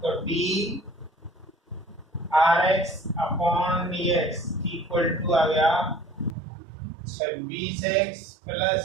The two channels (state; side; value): drops out; left; at 6.4 s